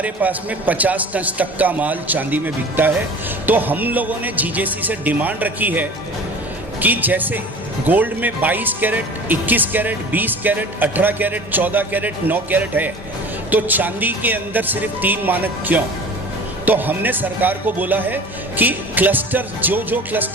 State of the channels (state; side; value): normal; both; correlation 0.40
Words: पास में 50 टन तक का माल चांदी में बिकता है. तो हम लोगों ने GJC से डिमांड रखी है कि जैसे गोल्ड में 22 carat, 21 carat, 20 carat, 18 carat, 14 carat, 9 carat है, तो चांदी के अंदर सिर्फ 3 मानक क्यों? तो हमने सरकार को बोला है कि क्लस्टर जो